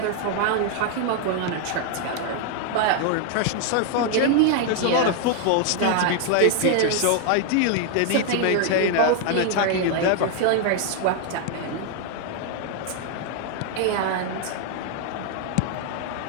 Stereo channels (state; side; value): different; both; correlation 0.00